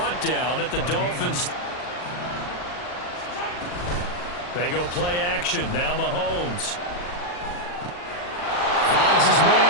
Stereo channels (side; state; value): right; late; 40 ms